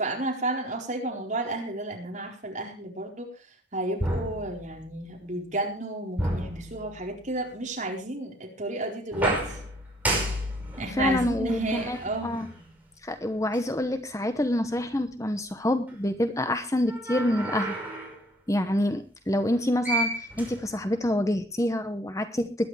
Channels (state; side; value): normal; both; correlation 0.59